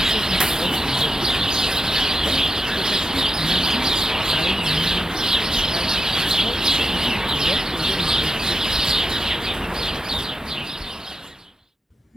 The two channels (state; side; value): normal; both; correlation 0.88